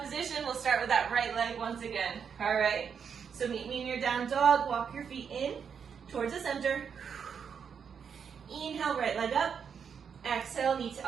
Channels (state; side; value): quieter; left; 6.9 dB